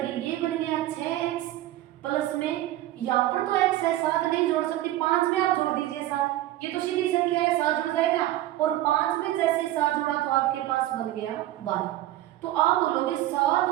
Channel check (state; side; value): quieter; left; 14.8 dB